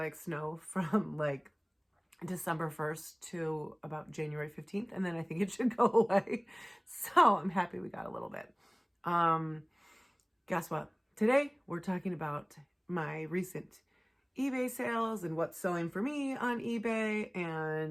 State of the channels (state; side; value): identical; both; correlation 1.00